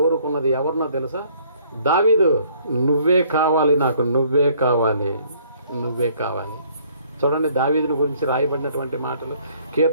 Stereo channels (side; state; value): both; inverted; correlation -0.61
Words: ఎవరినో తెలుసా? దావీదు. నువ్వే కావాలి నాకు, నువ్వే కావాలి. చూడండి దావీదుని గురించి రాయబడినటువంటి మాటలు.